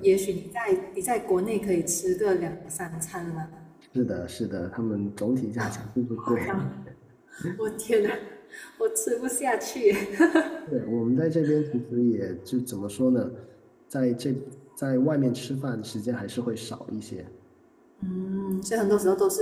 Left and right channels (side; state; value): both; identical; correlation 1.00